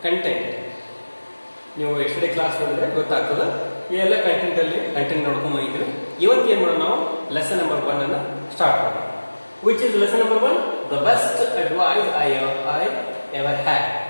content. ನೀವು ಎಷ್ಟೇ class ನೋಡಿದ್ರೆ ಗೊತ್ತಾಗ್ತದೆ ಈ ಎಲ್ಲ ಕಂಟೆಂಟ್ ನೋಡ್ಕೊಂಡು ಬಂದಿದ್ದೀವಿ. ಇವತ್ತು ಏನು ಮಾಡೋಣ, ನಾವು ಲೆಸನ್ ನಂಬರ್ 1 ಅನ್ನು ಸ್ಟಾರ್ಟ್ ಮಾಡೋಣ. Which is lesson number 1? The best advice I ever had,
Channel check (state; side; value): inverted; both; correlation -1.00